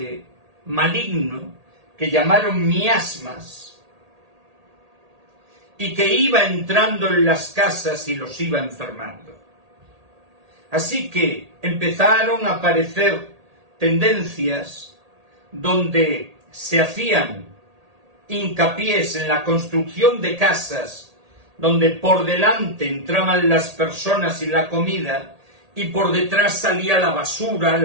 maligno que llamaron miasmas y que iba entrando en las casas y los iba enfermando. Así que empezaron a aparecer tendencias donde se hacían hincapiés en la construcción de casas donde por delante entraban las personas y la comida, y por detrás salía la basura,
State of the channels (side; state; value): left; late; 1.8 ms